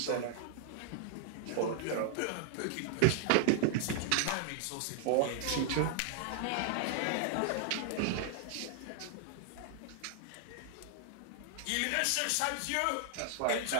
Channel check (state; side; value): different; both; correlation -0.01